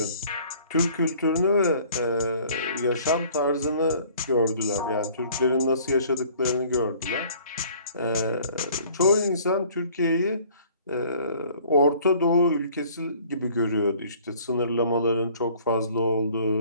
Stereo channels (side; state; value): both; inverted; correlation -0.54